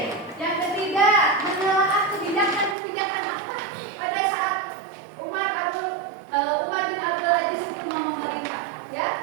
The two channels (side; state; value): left; drops out; at 2.8 s